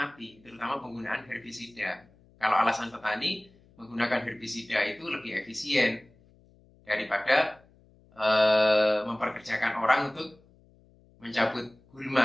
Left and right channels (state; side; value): noise; left; hum, 29 dB below the sound